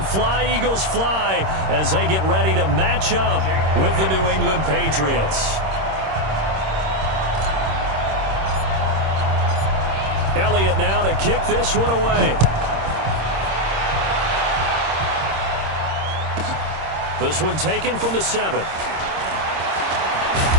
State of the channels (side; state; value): left; late; 26 ms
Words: "Fly, Eagles, fly," as they get ready to match up with the New England Patriots. Elliott now to kick this one away. This one taken from the 7.